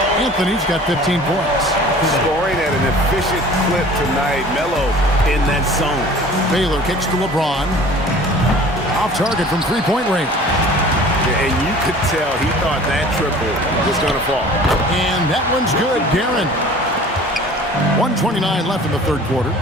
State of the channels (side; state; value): both; normal; correlation 0.46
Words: Anthony's got 15 points. Scoring at an efficient clip tonight. Melo in that zone. Baylor kicks to LeBron. Off target from 3-point range. And you could tell he thought that triple was going to fall. And that one's good. Guerin. 1:29 left in the third quarter.